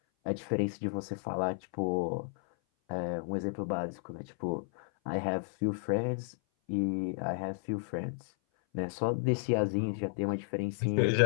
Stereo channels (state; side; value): silent; right; 56 dB below the other